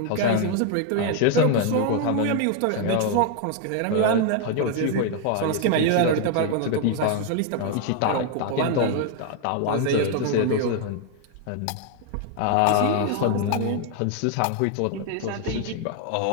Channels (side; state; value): both; different; correlation 0.00